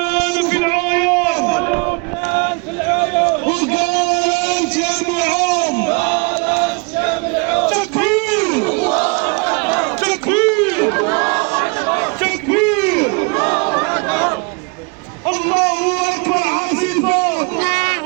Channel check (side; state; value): left; quieter; 31.0 dB